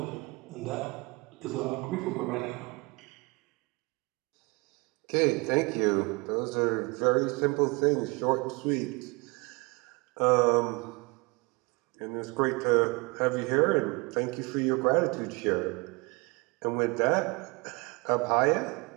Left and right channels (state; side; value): quieter; left; 27.4 dB